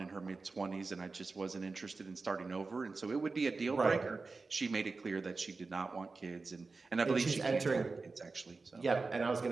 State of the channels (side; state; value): left; quieter; 4.0 dB